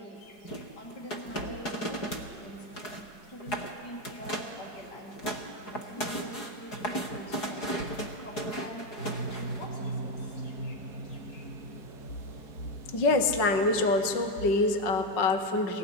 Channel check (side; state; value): right; late; 4.8 ms